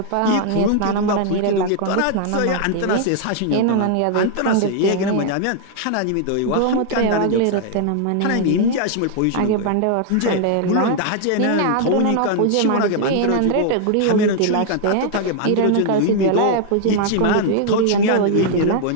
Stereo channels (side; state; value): both; different; correlation 0.00